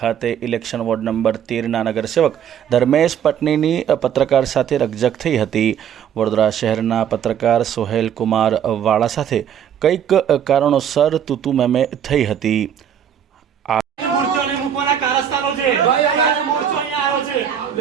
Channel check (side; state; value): left; quieter; 9.0 dB